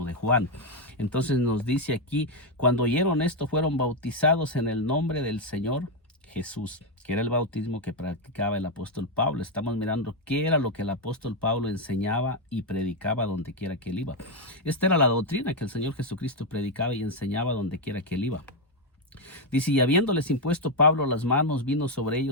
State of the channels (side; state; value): both; normal; correlation 0.03